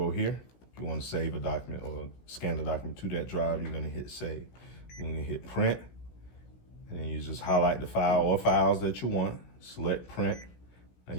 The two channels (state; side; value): late; right; 16 ms